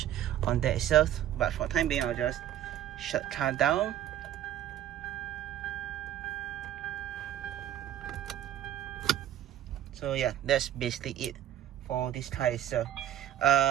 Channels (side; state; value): left; quieter; 11.8 dB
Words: on that itself. But for the time being, I'll just shut car down So yeah, that's basically it for this car itself.